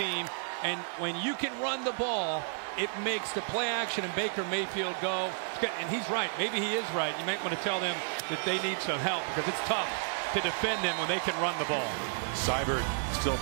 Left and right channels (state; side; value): silent; left; digital silence